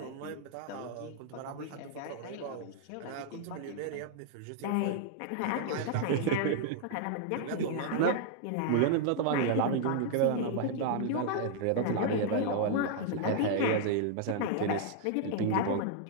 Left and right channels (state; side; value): different; both; correlation -0.01